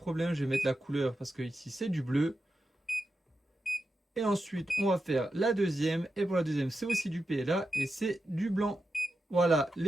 je vais mettre la couleur parce que ici c'est du bleu. Et ensuite on va faire la deuxième, et pour la deuxième c'est aussi du PLA et c'est du blanc. Voilà,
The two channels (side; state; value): both; normal; correlation 0.89